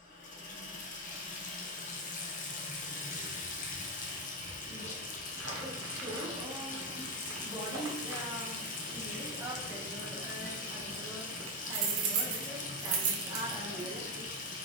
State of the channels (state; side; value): normal; both; correlation 0.10